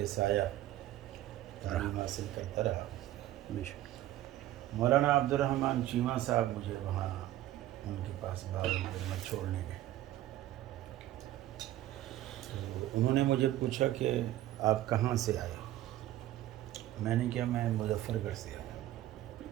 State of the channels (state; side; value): quieter; left; 14.3 dB